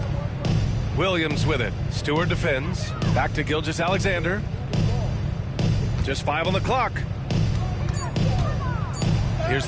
Williams with it. Stewart defends. Back to Gilgeous-Alexander. Just 5 on the clock. Here's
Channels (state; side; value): identical; both; correlation 1.00